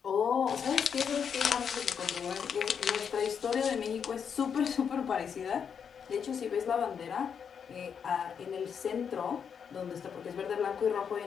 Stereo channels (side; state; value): right; quieter; 7.1 dB